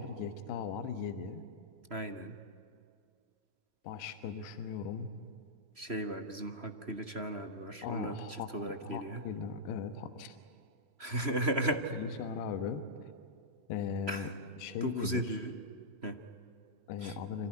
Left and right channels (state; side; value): late; left; 3.0 ms